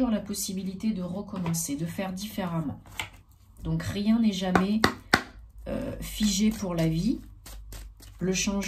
la possibilité de recommencer, de faire différemment. Donc rien n'est jamais figé pour la vie. Le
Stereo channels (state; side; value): identical; both; correlation 1.00